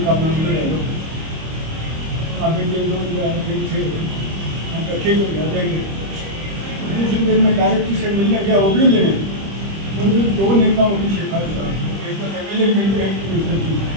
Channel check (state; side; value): late; left; 25 ms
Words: का मंदिर आगे दिन 2 थे, हम ठीक हो गया जाएंगे। दूसरे दिन में डायरेक्टर से मिलने गया, वो भी लेने मुझे 2 नेताओं की शिकायत था, एक तो MLA मिलते हैं